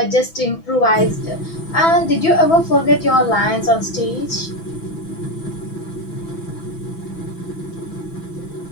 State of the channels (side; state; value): right; late; 6.0 ms